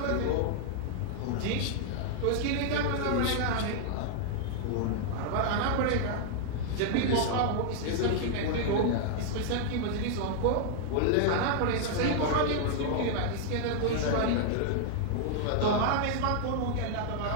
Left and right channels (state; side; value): different; both; correlation -0.01